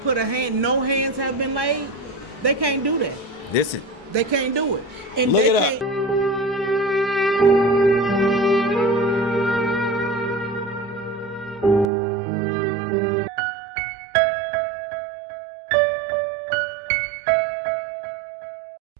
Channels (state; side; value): drops out; left; at 11.9 s